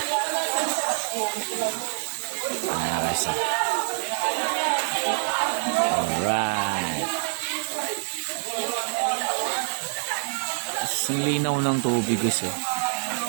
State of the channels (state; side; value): silent; left; 59 dB below the other